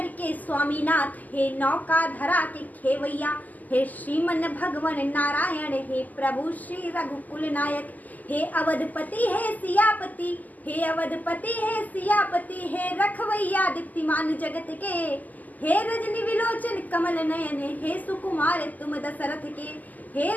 के स्वामीनाथ, हे नौका धरा के खेवैया। हे श्रीमन भगवन नारायण, हे प्रभु श्री रघुकुल नायक। हे अवधपति हे सियापति, हे अवधपति हे सियापति। हे रखवैया दीप्तिमान जगत के, हे रजनी विलोचन कमल नयन। हे सुकुमार तुम दशरथ के, हे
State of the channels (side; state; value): right; late; 0.081 ms